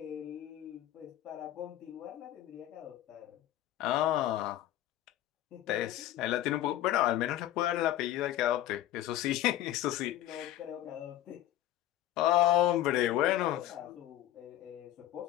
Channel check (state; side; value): quieter; right; 13.3 dB